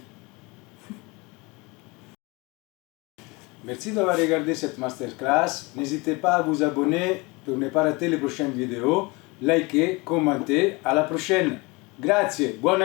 Merci d'avoir regardé cette masterclass. N'hésitez pas à vous abonner pour ne pas rater les prochaines vidéos. Likez, commentez. À la prochaine. Grazie, buon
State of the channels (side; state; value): right; quieter; 25.8 dB